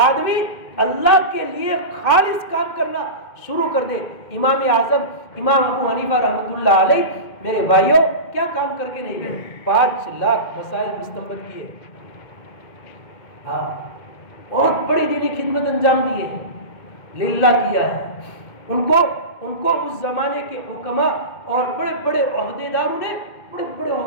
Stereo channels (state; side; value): late; right; 2.2 ms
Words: اللہ کے لیے خالص کام کرنا شروع کر دے۔ امام اعظم امام ابو حنیفہ رحمۃ اللہ علیہ، میرے بھائیوں، کیا کام کر کے نہیں گئے؟ 5 لاکھ مسائل مستنبط کیے، ہاں، بہت بڑی دینی خدمت انجام دی ہے، للہ کیا ہے۔ ان کو اس زمانے کے حکماء اور بڑے بڑے عہدے داروں نے بڑے بڑے